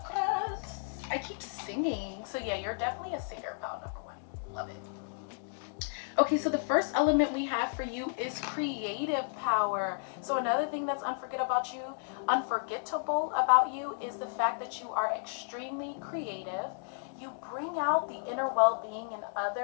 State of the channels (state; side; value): silent; right; digital silence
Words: I keep singing. So yeah, you're definitely a singer, pile number 1. Love it. Okay, so the first element we have for you is creative power. So another thing that's unforgettable about you is the fact that you are extremely creative. You bring out the inner well-being in